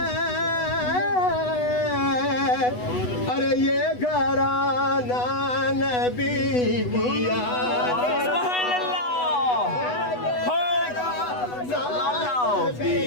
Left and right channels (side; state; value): right; late; 8.1 ms